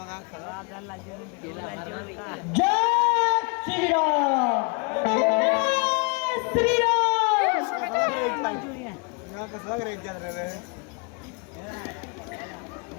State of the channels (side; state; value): right; quieter; 32.4 dB